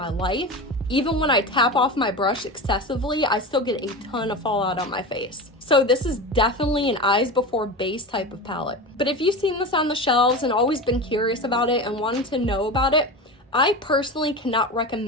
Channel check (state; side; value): normal; both; correlation 0.26